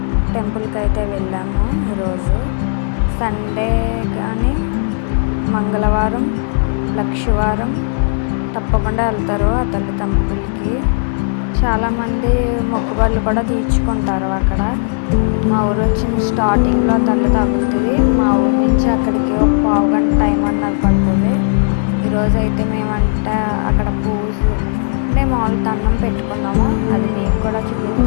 టెంపుల్కి అయితే వెళ్ళాము. ఈరోజు సండే కానీ మంగళవారం లక్షవారం తప్పకుండా వెళ్తారు ఆ తల్లి టెంపుల్కి. చాలామంది మొక్కుబళ్ళు కూడా తీర్చుకుంటారు అక్కడ. మా ఊరు వచ్చిన స్టార్టింగ్లో తల్లి తగులుతుంది. మా ఊరు నుంచి అక్కడికి ఒక పావు గంట టైం అన్నది పడుతుంది. ఈరోజు అయితే మేమంటే అక్కడ పూజ అంటే మామూలు దండం పెట్టుకున్నాము. అది మీకు కూడా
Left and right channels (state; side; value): silent; right; 62 dB below the other